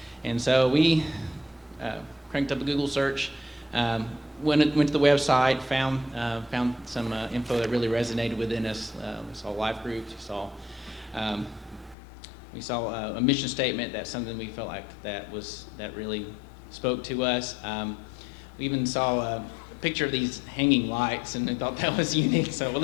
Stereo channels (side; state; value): right; drops out; at 12.0 s